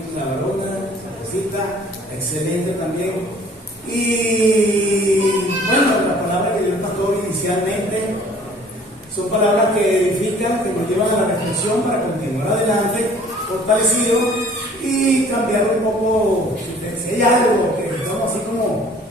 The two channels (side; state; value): both; normal; correlation 0.53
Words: la varona, la cosita, excelente también. Y bueno, las palabras que dio el pastor inicialmente son palabras que edifican, que nos llevan a la reflexión para continuar adelante, fortalecidos y cambiar un poco. Si hay algo que estamos así como,